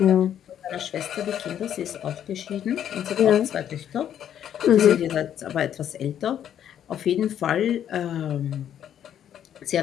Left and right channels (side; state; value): right; quieter; 10.0 dB